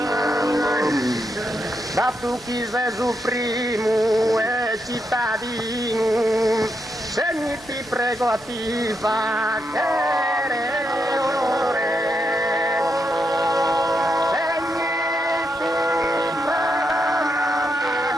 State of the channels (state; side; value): normal; both; correlation 0.82